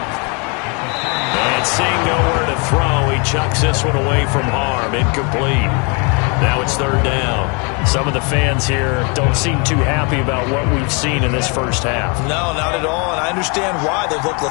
And seeing nowhere to throw, he chucks this one away from harm. Incomplete. Now it's 3rd down. Some of the fans here don't seem too happy about what we've seen in this first half. No, not at all, and I understand why. They've looked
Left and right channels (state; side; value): quieter; right; 33.1 dB